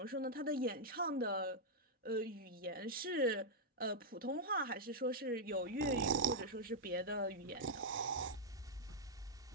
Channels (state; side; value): normal; both; correlation -0.05